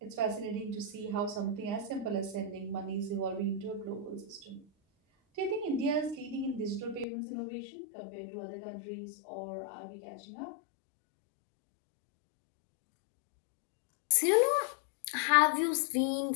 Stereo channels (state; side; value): drops out; right; at 7.1 s